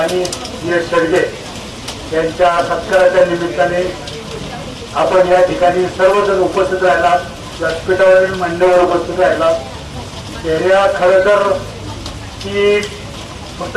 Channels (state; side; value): identical; both; correlation 1.00